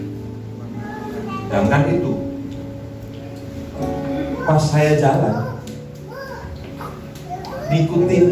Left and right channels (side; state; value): both; identical; correlation 1.00